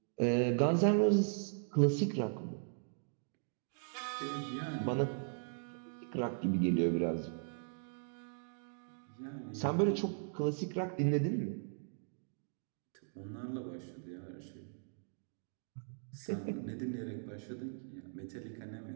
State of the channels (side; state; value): left; silent; digital silence